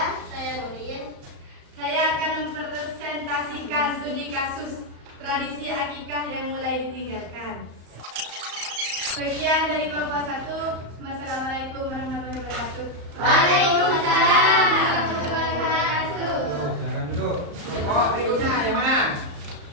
Saya Nurin. Saya akan mempresentasikan studi kasus tradisi akikah yang mulai ditinggalkan. Sekian dari kelompok 1. Wassalamualaikum warahmatullahi wabarakatuh. Waalaikumsalam warahmatullahi wabarakatuh. Silakan duduk. Kelompok berikutnya yang mana?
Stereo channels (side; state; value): left; late; 34 ms